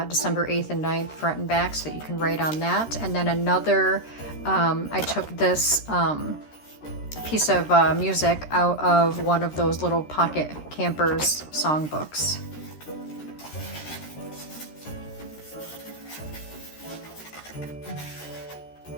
December 8th and 9th front and back, so you can write on that. And then another, I took this piece of music out of one of those little pocket campers songbooks.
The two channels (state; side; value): late; right; 13 ms